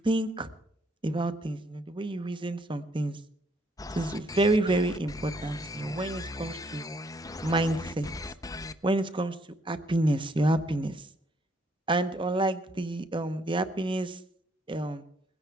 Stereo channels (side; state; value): both; normal; correlation 0.69